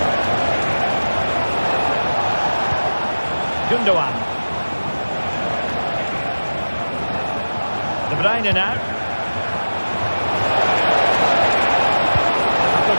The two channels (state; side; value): inverted; both; correlation -1.00